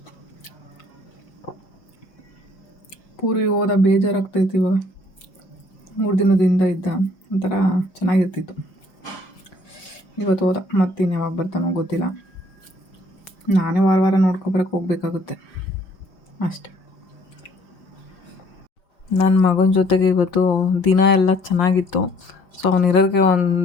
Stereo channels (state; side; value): late; right; 5.6 ms